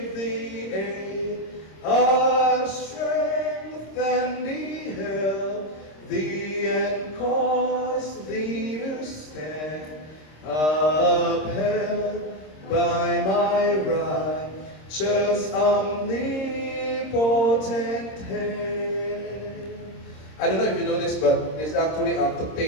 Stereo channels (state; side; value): late; right; 26 ms